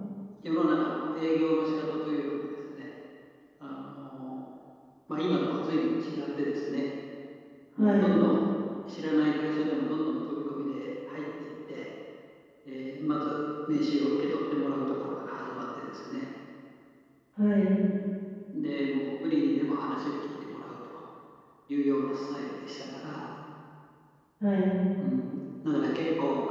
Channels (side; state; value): both; identical; correlation 1.00